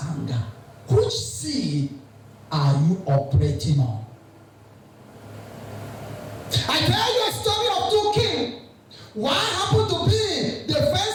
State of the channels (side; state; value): both; identical; correlation 1.00